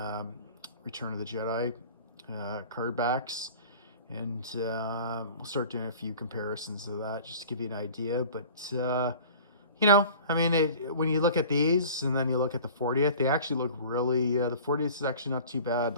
Return of the Jedi card backs. And we'll start doing a few comparisons of that just to give you an idea. But you know, I mean, when you look at these and then you look at the 40th, they actually look really, the 40th is actually not too bad,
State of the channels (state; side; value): inverted; both; correlation -0.43